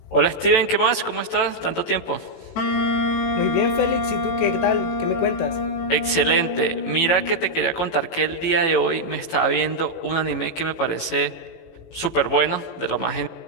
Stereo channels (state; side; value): late; right; 18 ms